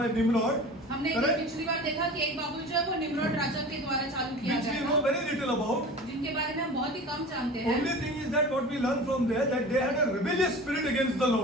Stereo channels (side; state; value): both; normal; correlation 0.37